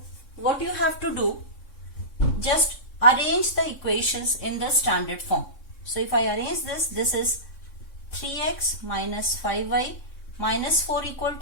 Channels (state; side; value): late; right; 3.6 ms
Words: what you have to do, just arrange the equations in the standard form. So if I arrange this is 3x minus 5y minus 4 equal